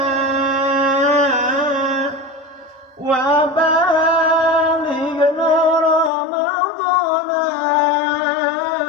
wa balighna Ramadana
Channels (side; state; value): right; drops out; at 6.1 s